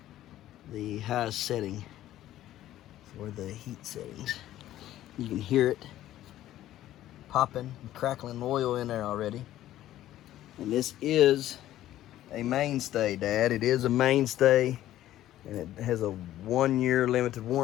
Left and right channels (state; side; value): quieter; right; 13.5 dB